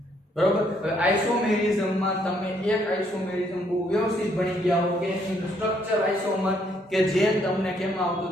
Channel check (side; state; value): both; normal; correlation 0.69